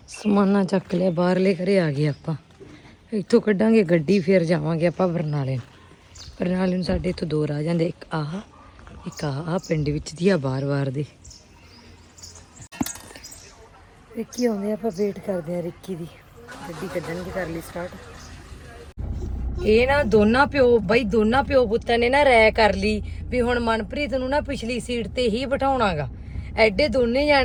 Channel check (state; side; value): identical; both; correlation 1.00